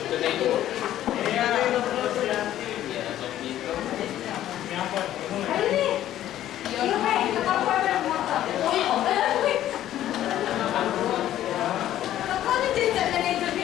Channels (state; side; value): quieter; right; 12.5 dB